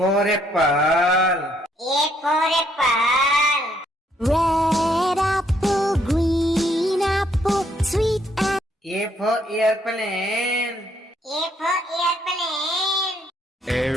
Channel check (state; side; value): normal; both; correlation 0.69